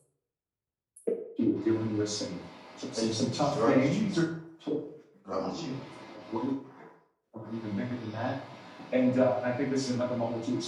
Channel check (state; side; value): identical; both; correlation 1.00